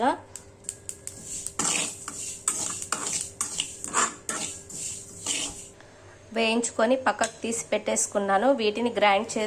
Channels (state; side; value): identical; both; correlation 1.00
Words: వేయించుకొని పక్కకు తీసి పెట్టేసుకున్నాను. వీటిని గ్రైండ్